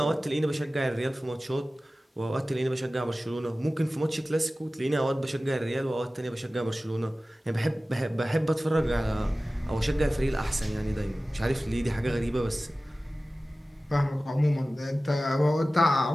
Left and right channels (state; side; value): normal; both; correlation 0.96